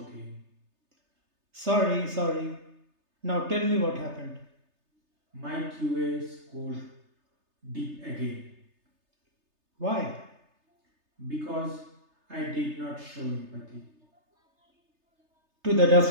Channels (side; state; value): left; late; 3.3 ms